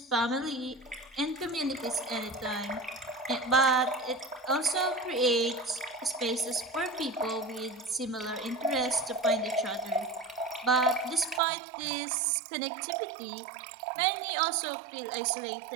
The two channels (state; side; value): drops out; left; at 11.4 s